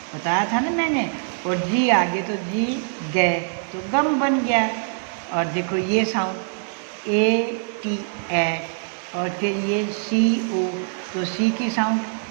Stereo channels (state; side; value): silent; left; 62 dB below the other